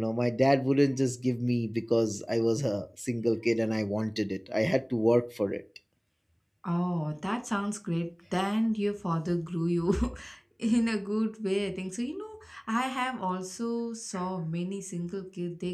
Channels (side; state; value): both; identical; correlation 1.00